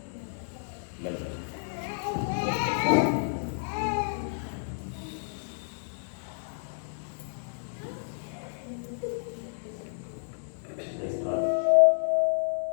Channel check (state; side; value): silent; right; digital silence